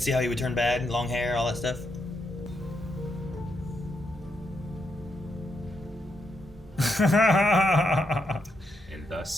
see how he would turn bad, long hair, all that stuff. And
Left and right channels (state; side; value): normal; both; correlation 0.81